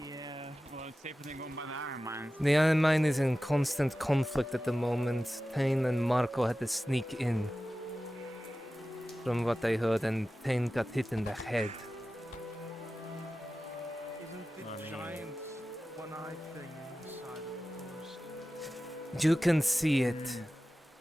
well, it's safer than going by the iron mine. The iron mine is in constant conflict at the moment. Tain and Marco had to sneak in. From what I heard, and Tain got hit in the head. Isn't the giant one-eyed thing inside of the forest? You can see it.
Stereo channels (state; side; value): normal; both; correlation 0.95